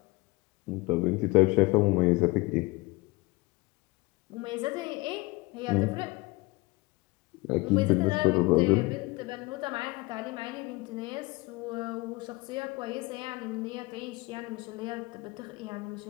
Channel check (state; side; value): quieter; right; 23.8 dB